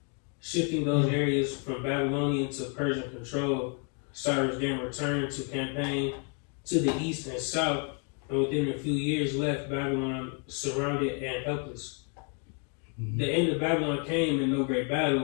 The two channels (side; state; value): right; quieter; 39.2 dB